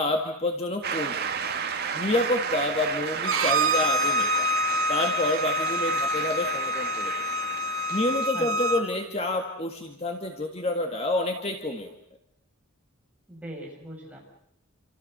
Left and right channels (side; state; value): both; normal; correlation 0.15